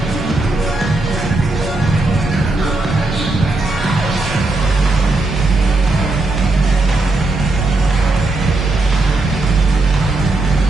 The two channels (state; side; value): quieter; left; 3.0 dB